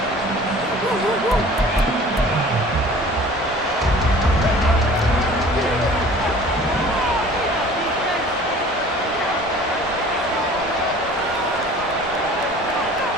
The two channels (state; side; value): normal; both; correlation 0.46